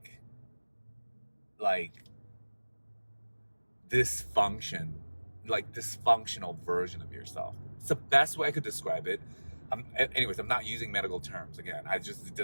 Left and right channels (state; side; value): inverted; both; correlation -1.00